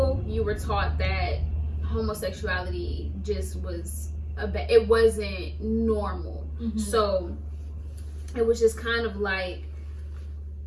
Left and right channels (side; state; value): both; identical; correlation 1.00